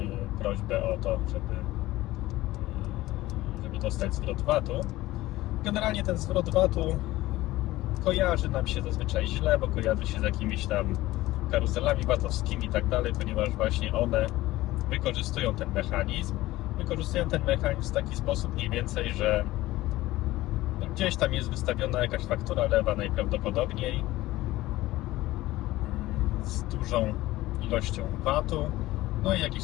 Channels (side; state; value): right; quieter; 17.3 dB